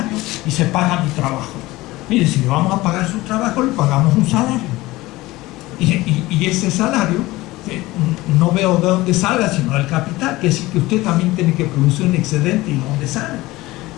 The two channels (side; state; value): right; quieter; 19.1 dB